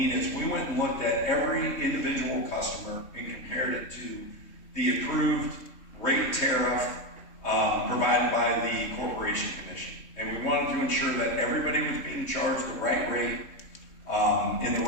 is we went and looked at every individual customer and compared it to the approved rate tariff provided by the Corporation Commission. And we wanted to ensure that everybody was being charged the right rate in the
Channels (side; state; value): right; late; 3.2 ms